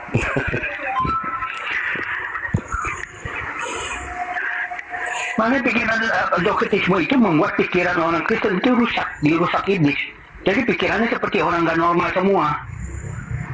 Makanya pikiran doktrinisme itu membuat pikiran orang Kristen itu rusak, dirusak iblis. Jadi pikirannya seperti orang gak normal semua.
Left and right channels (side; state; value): both; identical; correlation 1.00